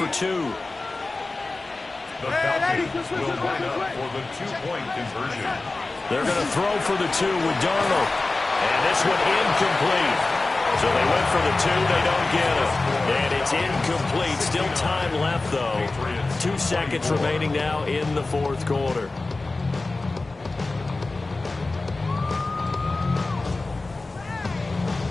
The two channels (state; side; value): quieter; right; 3.3 dB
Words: 2. The Falcons will line up for the 2-point conversion. They're going to throw for the 2 with Darnold. And this one incomplete. So they went for the 2. They don't get it. And it's incomplete. Still time left, though. 2 seconds remaining now in the 4th quarter.